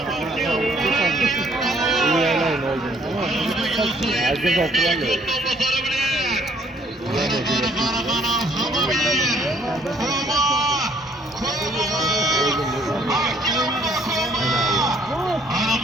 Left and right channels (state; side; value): normal; both; correlation 0.63